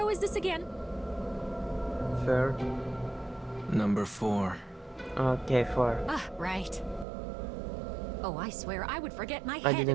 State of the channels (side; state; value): left; drops out; at 7.1 s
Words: is this again? Fair. Number 4. Okay, 4. Ah, right. Oh, I swear I would forget my I head if